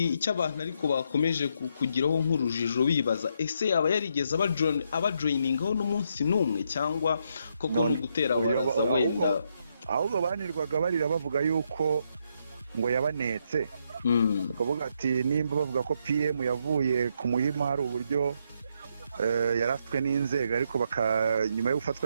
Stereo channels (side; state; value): both; inverted; correlation -0.77